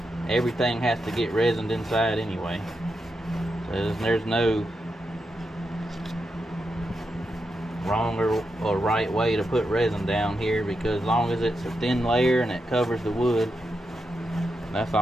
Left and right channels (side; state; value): both; normal; correlation 0.86